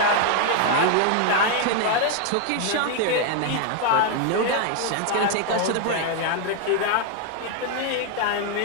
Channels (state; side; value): different; both; correlation 0.00